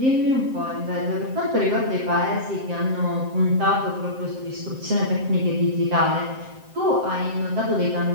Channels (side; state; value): left; late; 7.7 ms